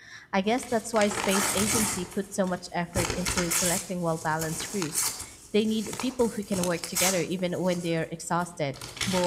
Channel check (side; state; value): both; identical; correlation 1.00